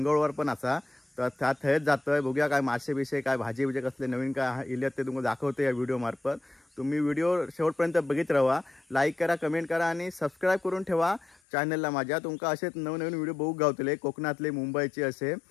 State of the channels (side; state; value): right; drops out; at 11.4 s